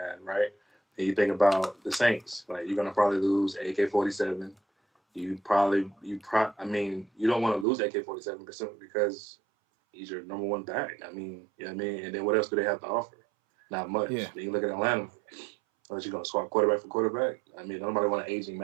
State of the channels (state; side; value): drops out; left; at 7.7 s